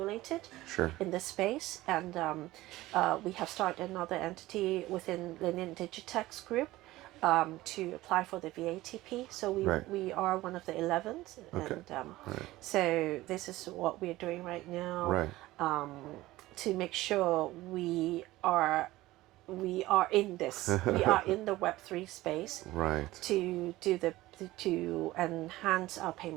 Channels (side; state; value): left; quieter; 17.5 dB